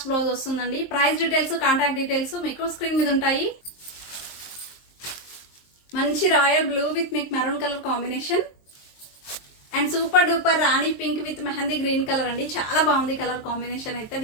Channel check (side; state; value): right; late; 23 ms